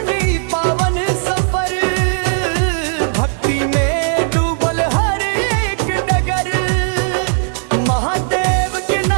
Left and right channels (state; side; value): silent; left; 66 dB below the other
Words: पावन सफर, भक्ति में डूबल हर एक डगर। महादेव के